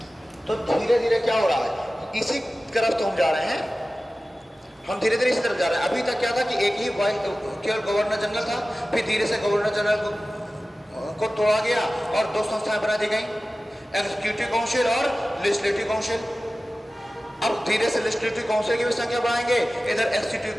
तो धीरे धीरे क्या हो रहा है? इसी तरफ तो हम जा रहे हैं, हम धीरे धीरे इसी तरफ जा रहे हैं। अभी तक क्या था कि एक ही केवल गवर्नर जनरल था, फिर धीरे से गवर्नर जनरल को तोड़ा गया और 2 संस्थाएं बना दी गई, एग्जीक्यूटिव काउंसिल और लेजिस्लेटिव काउंसिल। अब धीरे से लेजिस्लेटिव काउंसिल की भी संख्या बढ़ाएंगे, इधर एग्जीक्यूटिव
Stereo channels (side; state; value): both; normal; correlation 0.96